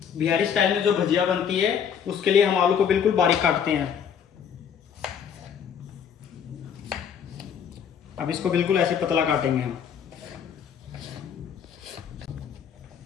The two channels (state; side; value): quieter; right; 7.8 dB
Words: बिहारी स्टाइल में जो भजिया बनती है उसके लिए हम आलू को बिल्कुल बारीक काटते हैं। अब इसको बिल्कुल ऐसे पतला काटेंगे हम।